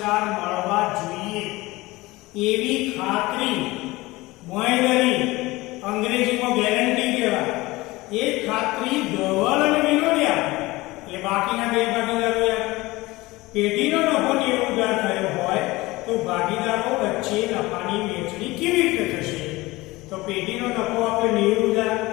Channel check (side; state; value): right; quieter; 20.6 dB